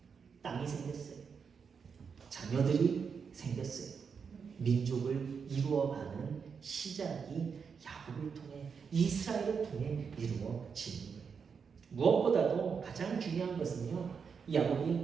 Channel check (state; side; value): quieter; left; 6.1 dB